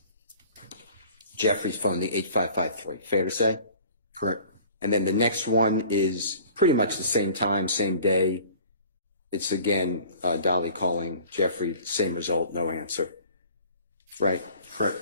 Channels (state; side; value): inverted; both; correlation -0.47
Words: Jeffrey's phone, the 8553. Fair to say? Correct. And then the next one is pretty much the same time, same day. It's again Dolly calling Jeffrey, same result, no answer. Right? Correct.